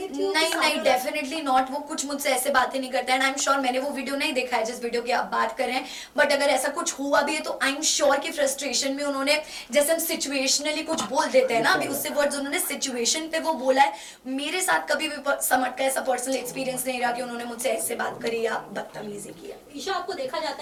हो? नहीं नहीं, डेफिनेटली नॉट। वो कुछ मुझसे ऐसे बातें नहीं करते एंड आई एम श्योर, मैंने वो वीडियो नहीं देखा है जिस वीडियो की आप बात कर रहे हैं, बट अगर ऐसा कुछ हुआ भी है तो आई एम श्योर कि फ्रस्ट्रेशन में उन्होंने, जैसे हम सिचुएशनली कुछ बोल देते हैं ना, अभी उससे वर्ड्स उन्होंने सिचुएशन पे वो बोला है। मेरे साथ कभी भी समझ का ऐसा पर्सनल एक्सपीरियंस नहीं रहा कि उन्होंने मुझसे ऐसे बात करी या बदतमीजी की है। ईशा, आपको देखा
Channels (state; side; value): identical; both; correlation 1.00